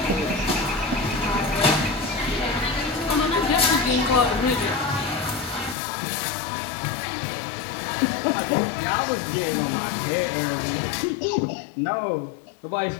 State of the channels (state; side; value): drops out; right; at 5.8 s